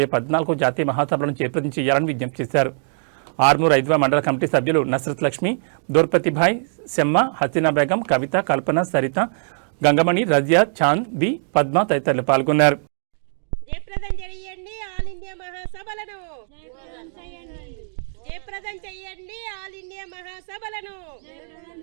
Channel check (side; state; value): left; silent; 59 dB below the other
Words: 14 జాతీయ మహాసభలను జయప్రదం చేయాలని విజ్ఞప్తి చేశారు. ఆర్మూర్ ఐద్వ మండల కమిటీ సభ్యులు నస్రత్ లక్ష్మి, దూర్పతిభాయ్, సెమ్మ, హసీనా బేగం, కవిత, కల్పన, సరిత, గంగమణి, రజియా, చాంద్, బి, పద్మ తదితరులు పాల్గొన్నారు. జయప్రదం చేయండి ఆల్ ఇండియా మహాసభలను, జయప్రదం చేయండి ఆల్ ఇండియా మహాసభలను,